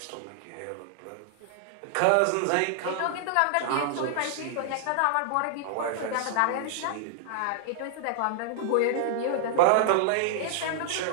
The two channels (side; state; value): both; different; correlation -0.01